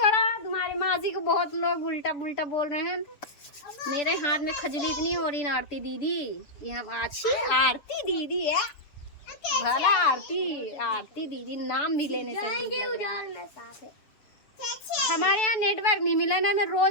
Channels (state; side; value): late; right; 6.9 ms